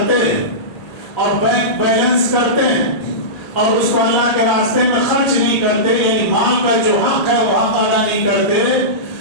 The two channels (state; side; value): late; right; 1.9 ms